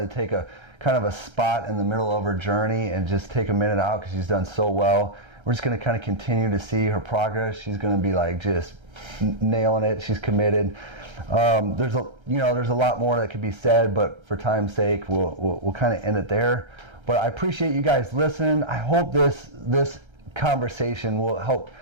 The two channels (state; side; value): late; left; 1.3 ms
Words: to take a kind of a spot in the middle of her journey and just take a minute out because she's done so well. We're just going to kind of continue to see her progress. She's going to be like just nailing it. She's committed. There's a lot more that could be said, but for time's sake, we'll kind of end it there. But I appreciate you guys listening. I hope this conversation will